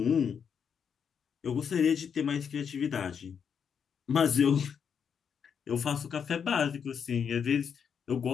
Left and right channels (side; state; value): right; quieter; 7.2 dB